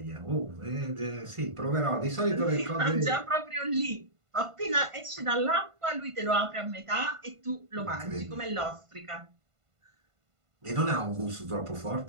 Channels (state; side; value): late; left; 1.5 ms